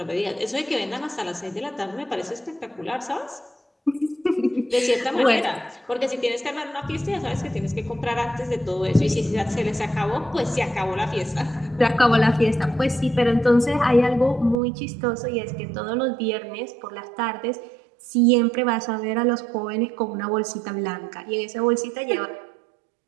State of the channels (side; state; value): left; drops out; at 14.6 s